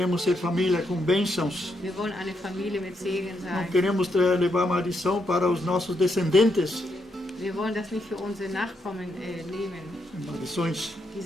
ser família com bênçãos. Wir wollen eine Familie mit Segen Não sein. queremos levar maldição para os nossos descendentes. Wir wollen das nicht für unsere Nachkommen nehmen, Maldições.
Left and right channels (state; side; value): normal; both; correlation 0.79